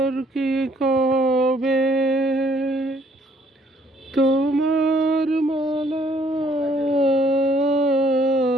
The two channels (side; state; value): both; normal; correlation 0.63